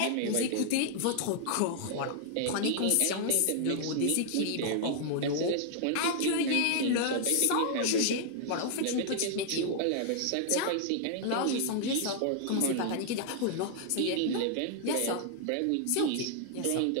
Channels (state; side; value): different; both; correlation -0.01